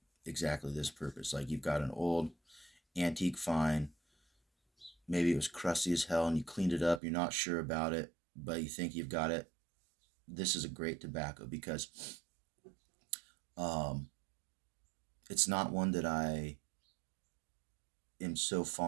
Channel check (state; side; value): drops out; left; at 7.0 s